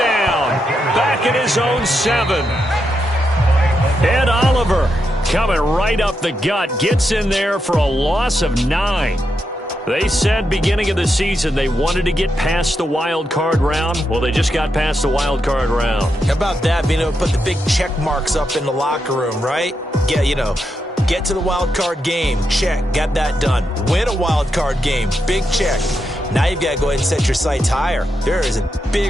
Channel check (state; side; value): normal; both; correlation 0.84